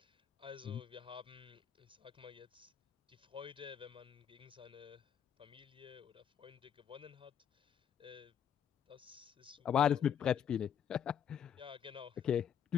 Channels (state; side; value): quieter; right; 8.6 dB